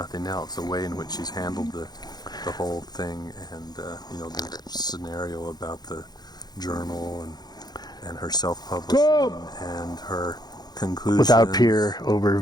else, the way in which she's handled the whole thing, and the scenario about the journal and her self-publishing and her conclusions Without peer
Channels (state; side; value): late; right; 0.19 ms